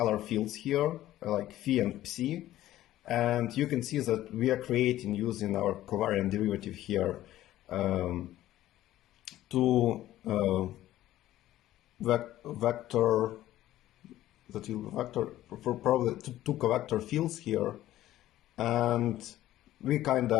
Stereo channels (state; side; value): quieter; right; 14.2 dB